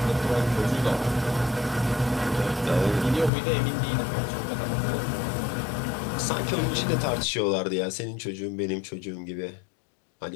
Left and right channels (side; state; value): right; drops out; at 3.3 s